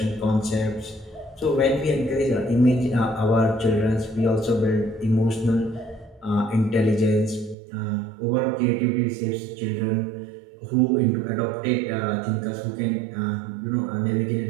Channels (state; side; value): drops out; left; at 7.6 s